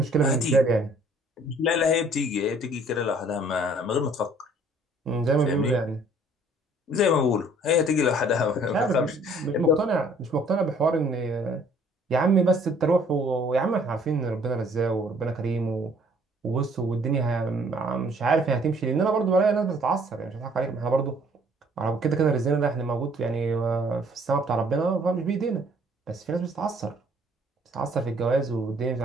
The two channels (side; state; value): both; normal; correlation 0.59